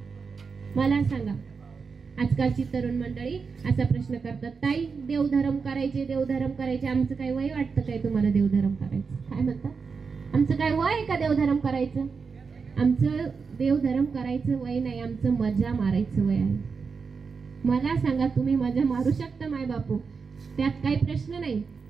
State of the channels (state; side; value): quieter; left; 5.2 dB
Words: मला सांगा, आजकालची तरुण मंडळी असा प्रश्न करतात, ताई देवधर्म करायचे, आमचं काय वय वाटतं काय तुम्हाला देवधर्म करायचं? काय म्हणतात, आमचं काय वय आहे का देवधर्म करायचं? आमचं देवधर्म करायचं वय नाही, आमचं मजा मारायचं वय आहे. मला सांगा, तुम्ही मजा मारू शकता माय बापू, त्यात काही प्रश्न नाही.